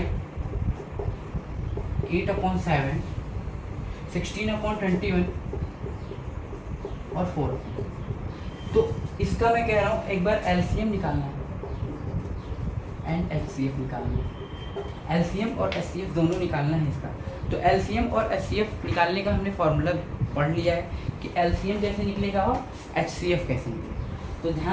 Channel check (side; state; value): both; identical; correlation 1.00